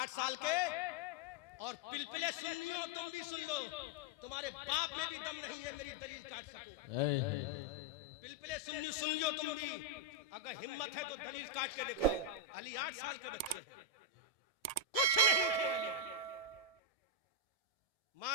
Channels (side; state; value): left; late; 1.7 ms